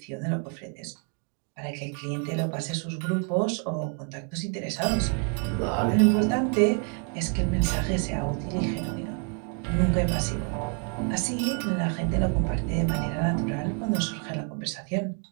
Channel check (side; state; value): left; quieter; 39.9 dB